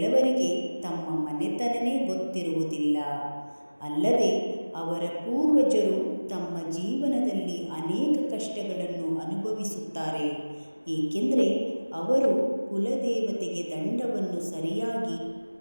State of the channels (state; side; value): inverted; both; correlation -1.00